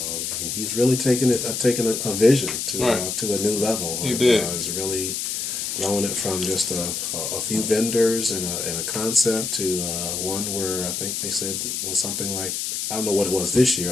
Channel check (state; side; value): noise; left; hiss, 3 dB below the sound